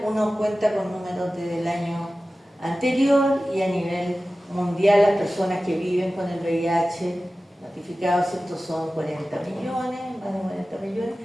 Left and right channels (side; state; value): both; normal; correlation 0.96